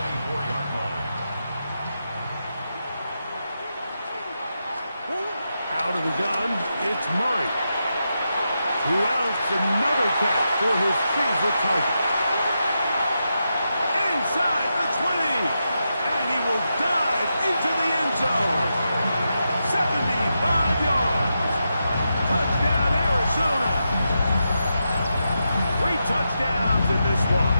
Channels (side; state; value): both; inverted; correlation -0.86